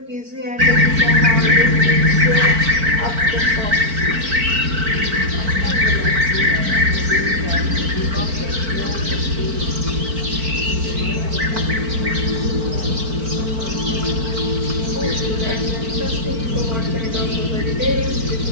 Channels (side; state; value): left; late; 4.5 ms